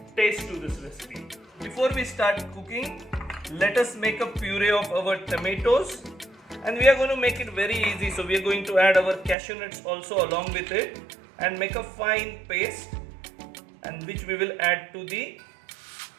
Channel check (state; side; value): drops out; left; at 9.3 s